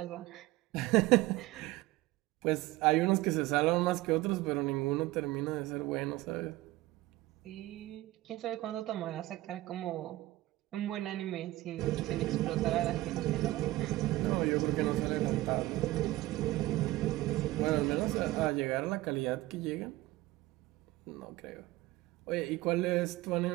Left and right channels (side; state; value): left; quieter; 18.1 dB